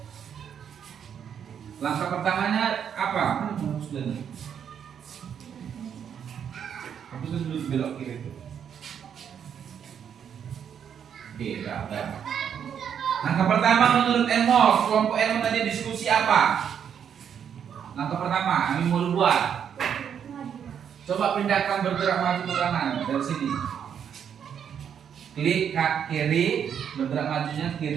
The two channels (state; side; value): quieter; left; 8.2 dB